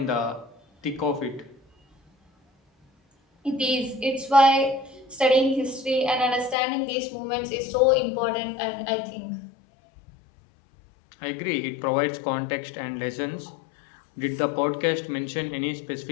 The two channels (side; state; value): right; drops out; at 6.6 s